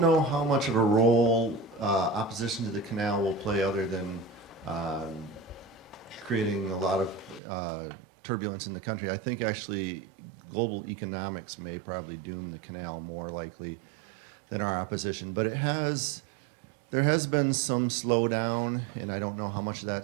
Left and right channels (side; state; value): left; drops out; at 7.4 s